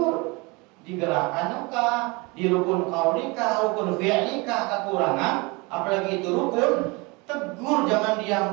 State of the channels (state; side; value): quieter; left; 26.9 dB